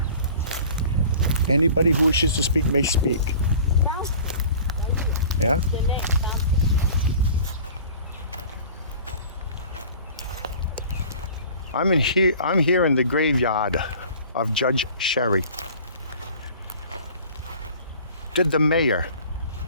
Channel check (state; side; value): inverted; both; correlation -0.44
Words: Anybody who wishes to speak may speak. Yeah? The name. I'm here in the graveyard of Judge Sherry. Did the mayor